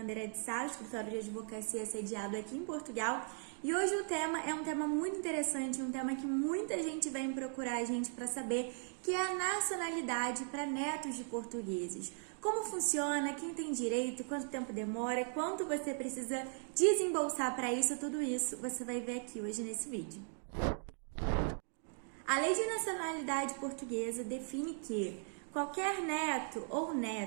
de Sá, escritório de advocacia sediado aqui em Portugal. E hoje o tema é um tema muito interessante, um tema que muita gente vem procurar a gente para saber, que é a nacionalidade para netos de portugueses. Como funciona, quem tem direito, quanto tempo demora, quanto você precisa desembolsar para isso, tudo isso você vai ver aqui hoje nesse vídeo. A Lei de Nacionalidade Portuguesa define que qualquer neto ou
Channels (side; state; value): left; silent; 52 dB below the other